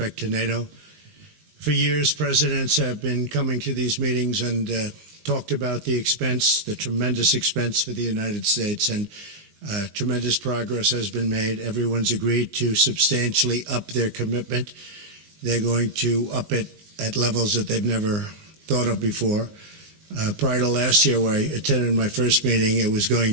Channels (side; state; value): left; late; 19 ms